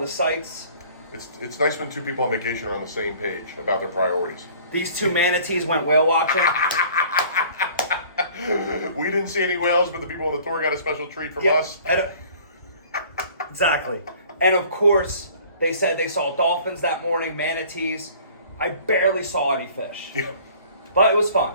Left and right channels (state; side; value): inverted; both; correlation -0.51